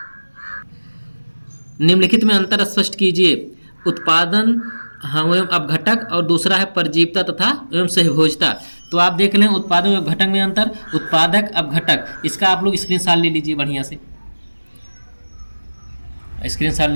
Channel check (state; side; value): inverted; both; correlation -1.00